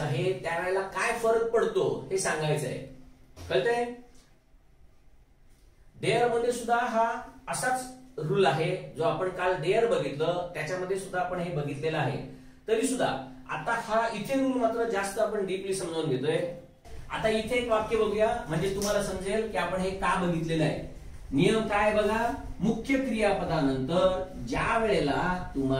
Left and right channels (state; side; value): identical; both; correlation 1.00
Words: आहे त्यावेळेला काय फरक पडतो हे सांगायचं आहे. कळतंय? डेअर मध्ये सुद्धा हा असाच रूल आहे जो आपण काल डेअर बघितलं त्याच्यामध्ये सुद्धा आपण हे बघितलेलं आहे. तरी सुद्धा आता हा इथे रूल मात्र जास्त आपण डीपली समजावून घेतोय. आता इथे एक वाक्य बघूया म्हणजे तुम्हाला समजेल की आपण हे का बघितलेलं आहे. नियम काय बघा, मुख्य क्रियापदानंतर ज्या वेळेला